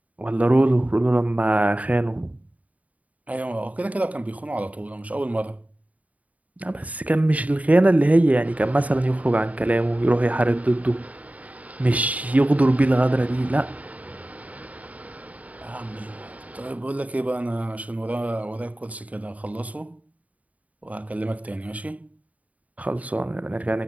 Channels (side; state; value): left; late; 0.070 ms